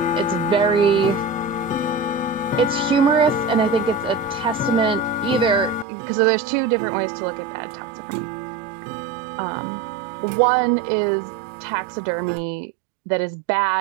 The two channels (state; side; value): drops out; left; at 5.9 s